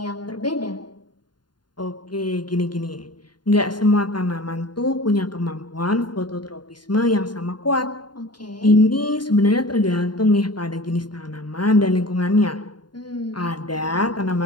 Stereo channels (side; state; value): right; late; 0.71 ms